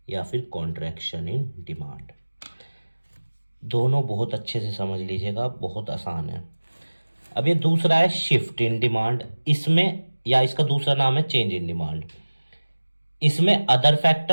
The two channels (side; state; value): both; inverted; correlation -1.00